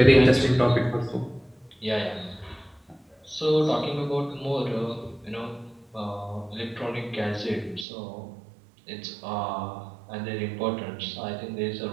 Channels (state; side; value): drops out; left; at 7.9 s